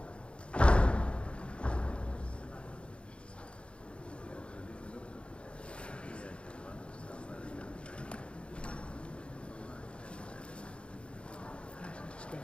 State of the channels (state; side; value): late; right; 0.058 ms